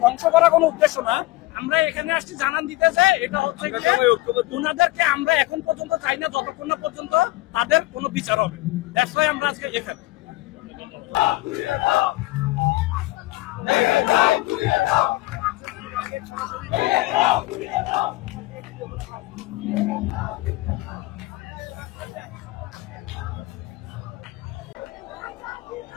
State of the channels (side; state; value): right; quieter; 19.5 dB